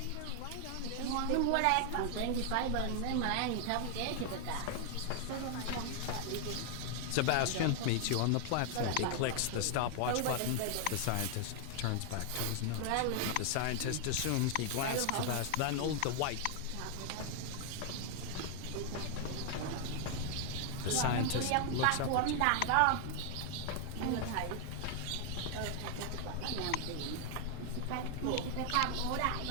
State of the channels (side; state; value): both; different; correlation 0.00